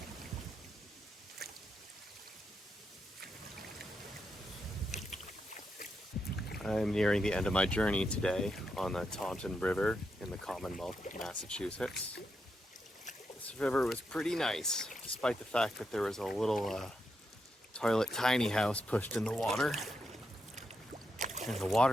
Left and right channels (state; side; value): normal; both; correlation 0.84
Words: I'm nearing the end of my journey today on the Taunton River in the Commonwealth of Massachusetts. This river was pretty nice, despite the fact that there was a little toilet tiny house pushed in the water. And the